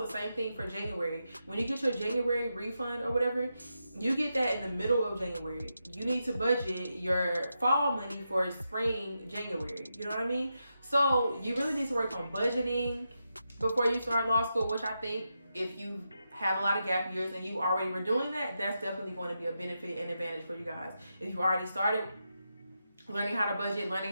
same thing for January. When you get your January refund or whatever, you get that in the middle of January. You need to budget your fall money for spring January. You know what I mean? So you really need to work on budgeting before you start law school, which I think if you had a lot of gap years and you already were doing that, that's definitely going to be a benefit and advantage for you guys. If you already started learning how to budget, learning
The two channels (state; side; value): inverted; both; correlation -0.87